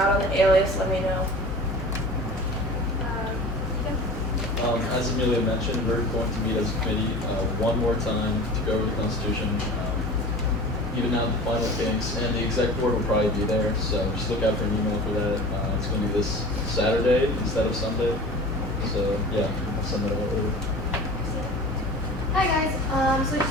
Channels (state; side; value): normal; both; correlation 0.38